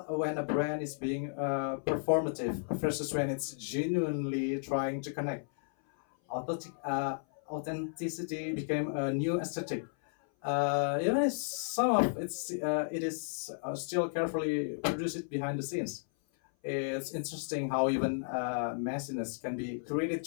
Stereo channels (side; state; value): right; silent; 55 dB below the other